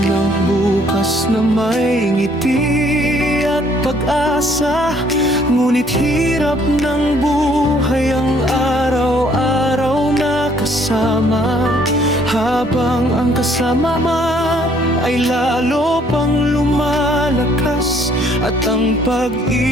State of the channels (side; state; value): both; normal; correlation 0.63